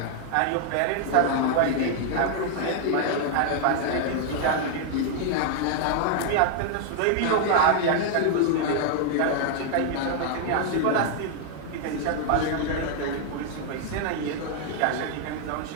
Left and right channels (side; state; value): both; different; correlation 0.00